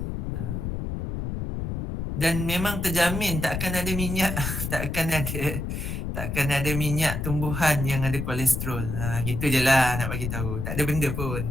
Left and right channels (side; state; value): left; noise; rumble, 3 dB below the sound